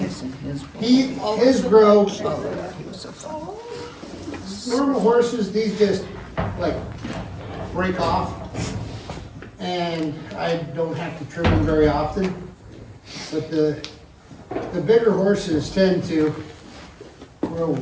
His grow, normal horses, these just like break off. And I don't have to trim them very often. But the bigger horses tend to grow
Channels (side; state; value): both; identical; correlation 1.00